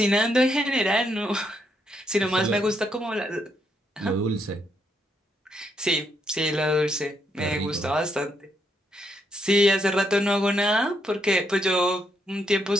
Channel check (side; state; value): both; normal; correlation 0.77